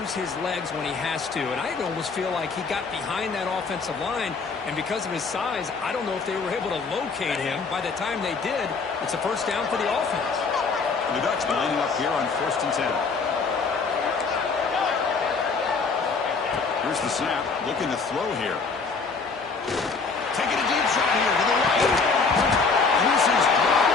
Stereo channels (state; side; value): quieter; right; 4.7 dB